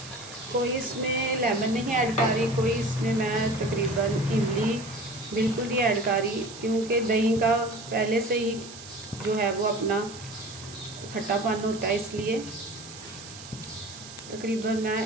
कोई इसमें लेमन नहीं ऐड कर रही, कोई इसमें मैं तकरीबन इमली बिल्कुल नहीं ऐड कर रही, क्योंकि दही का पहले से ही जो है वो अपना खट्टापन होता है, इसलिए तकरीबन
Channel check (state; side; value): noise; right; hiss, 15 dB below the sound